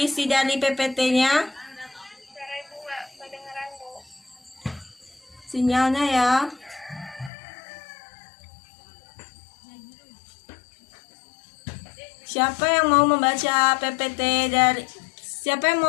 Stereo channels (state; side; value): drops out; right; at 7.3 s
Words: dari PPT-nya? Suara Ibu nggak kedengeran, Bu. Sinyalnya ya. Siapa yang mau membaca PPT dari Siapa yang